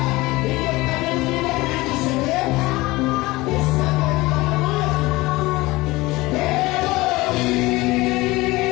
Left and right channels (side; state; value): right; quieter; 20.8 dB